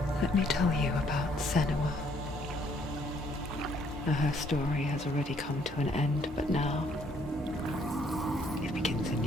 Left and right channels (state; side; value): normal; both; correlation 0.66